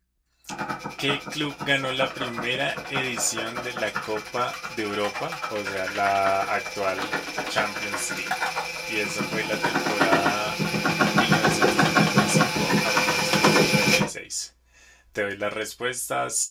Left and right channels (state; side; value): identical; both; correlation 1.00